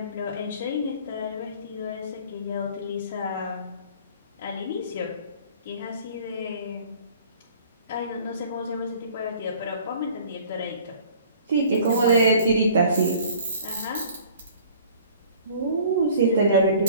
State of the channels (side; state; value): both; inverted; correlation -0.50